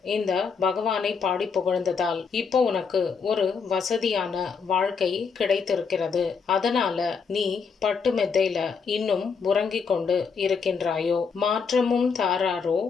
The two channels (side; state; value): right; quieter; 5.7 dB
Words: இந்த பகவானை பாடி புகழ்ந்ததால் இப்போ உனக்கு ஒரு வசதியான வாழ்க்கை கிடைத்திருக்கிறது. அதனால நீ பட்டு மெத்தையில இன்னும் உறங்கிக் கொண்டு இருக்கின்றாயோ? மாற்றமும் தாராரோ